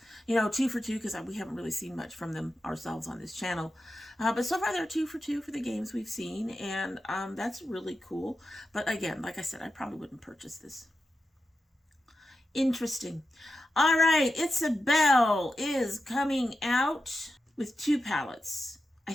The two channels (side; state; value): both; normal; correlation 0.90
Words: you know, 2 for 2 because we haven't really seen much from them ourselves on this channel. But so far they're 2 for 2 for the games we've seen, and that's really cool. But again, like I said, I probably wouldn't purchase this. Interesting. All right, Itsbel is coming out with 2 palettes. I